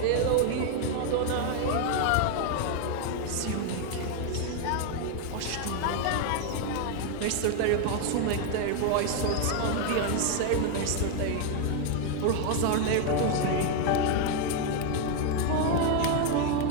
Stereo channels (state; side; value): different; both; correlation 0.01